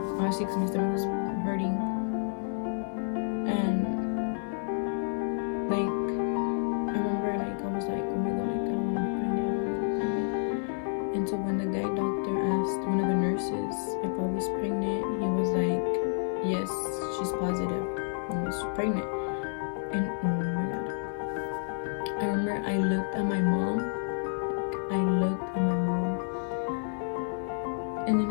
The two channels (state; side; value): silent; right; digital silence